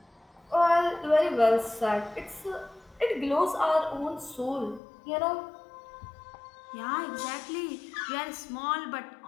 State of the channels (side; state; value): right; drops out; at 4.8 s